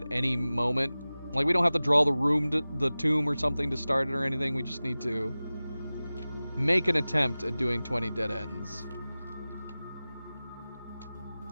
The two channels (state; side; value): inverted; both; correlation -0.97